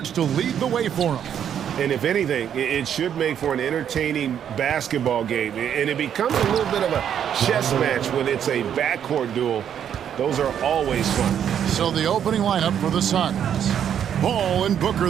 to lead the way for them. And if anything, it should make for an entertaining basketball game. And it becomes a little bit of a chess match when it's a backcourt duel. Those are always fun. So the opening lineup for the Suns. Ball and Booker,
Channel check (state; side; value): quieter; left; 9.1 dB